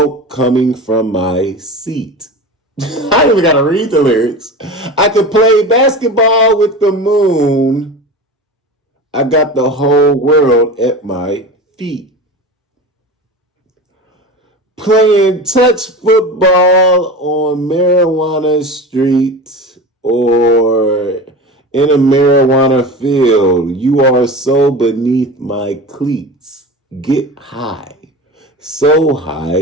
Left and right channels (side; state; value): both; normal; correlation 0.30